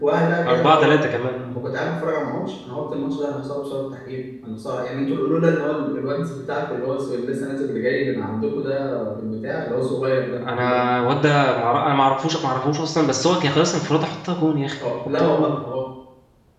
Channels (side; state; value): both; identical; correlation 1.00